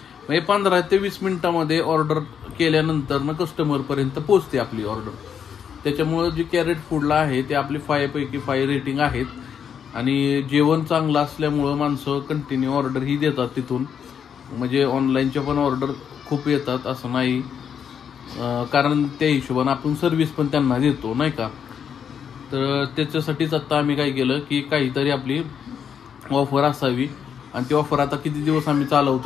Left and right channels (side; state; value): right; quieter; 7.8 dB